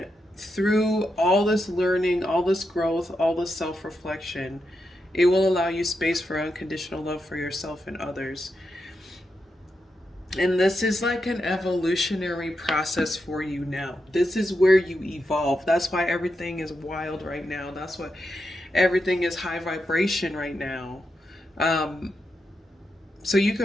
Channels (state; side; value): normal; both; correlation 0.85